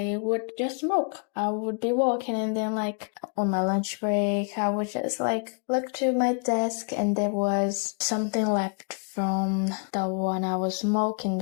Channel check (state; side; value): quieter; right; 38.7 dB